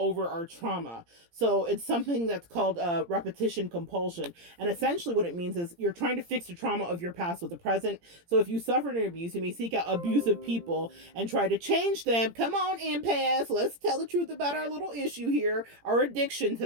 our trauma. So it's something that's called repetition compulsion. And essentially what it means is you're trying to fix the trauma of your past with the present. So if you suffered an abuse, you may seek out abusive people and try to change them. Come on, empaths, let's tell the truth about our little issue here, our addiction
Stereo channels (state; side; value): late; left; 17 ms